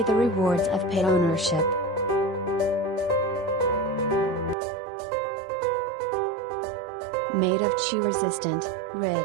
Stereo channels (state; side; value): drops out; left; at 4.5 s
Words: the rewards of pet ownership. Made of chew-resistant,